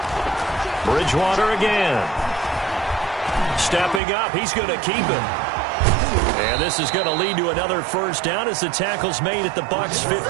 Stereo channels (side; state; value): left; drops out; at 4.0 s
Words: Bridgewater again. Stepping up, he's going to keep it. And this is going to lead to another first down as the tackle's made at the Bucs'